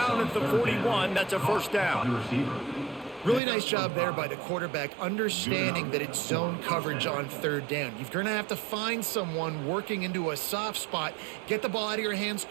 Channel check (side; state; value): left; drops out; at 3.4 s